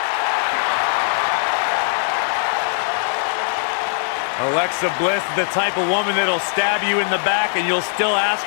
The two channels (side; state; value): right; silent; digital silence